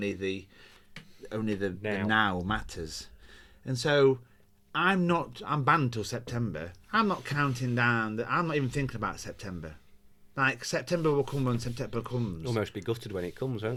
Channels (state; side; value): identical; both; correlation 1.00